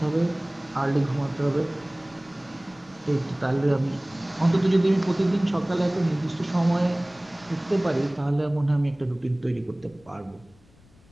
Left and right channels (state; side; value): noise; left; rumble, 28 dB below the sound